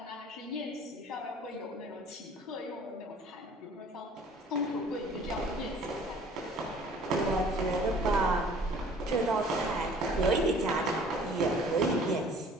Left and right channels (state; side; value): normal; both; correlation 0.52